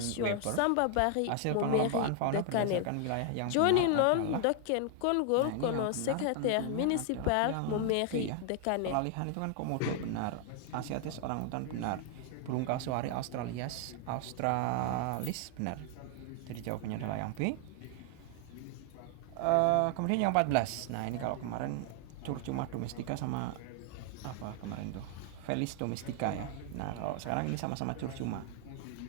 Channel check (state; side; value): different; both; correlation 0.00